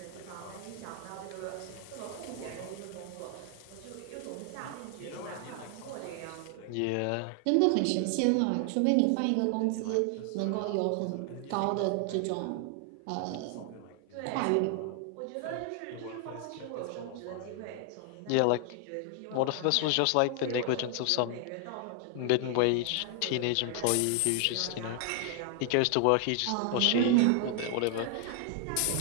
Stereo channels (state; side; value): different; both; correlation 0.00